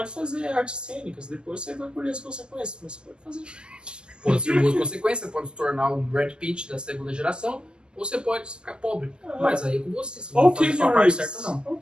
fazer artes cênicas, depois você vai colher as consequências, mas você pode fazer. Pode ser boas consequências, pode se tornar um Brad Pitt da segunda geração, ou você pode ficar pobre. Mas aí é com você, você Ou não faz a sua parte certa, não. Ou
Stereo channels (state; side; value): late; left; 0.047 ms